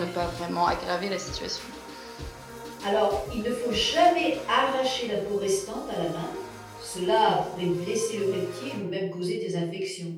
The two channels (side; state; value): both; identical; correlation 1.00